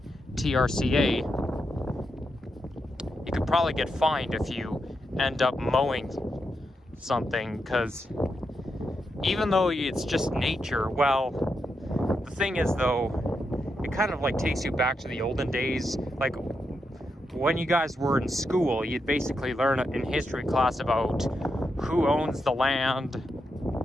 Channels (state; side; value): normal; both; correlation 0.84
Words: TRCA. You could probably get fined if you end up mowing something, because even though it's just nature, well, the thing is though, it kind of like takes you back to the olden days. Like when you guys were in school, you'd basically learn in history class about who owns the land,